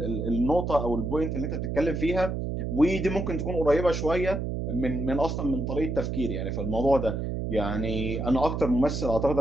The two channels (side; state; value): right; noise; hum, 3 dB below the sound